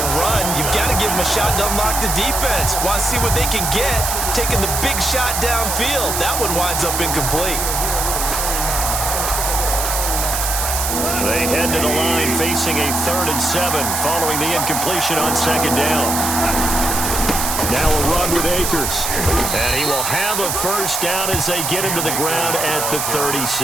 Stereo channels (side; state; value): right; noise; hiss, 1 dB below the sound